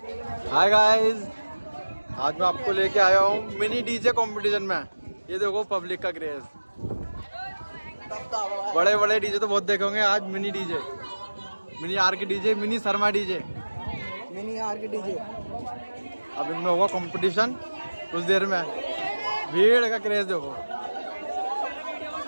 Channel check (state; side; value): inverted; both; correlation -1.00